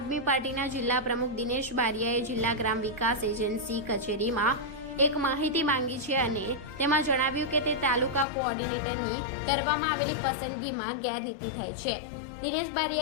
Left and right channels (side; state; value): right; drops out; at 8.2 s